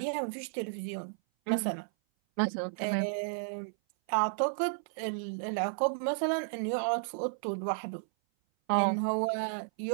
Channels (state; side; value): silent; left; 56 dB below the other